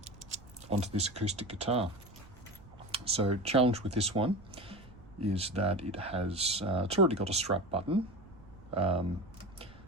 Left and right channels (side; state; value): right; noise; rumble, 21 dB below the sound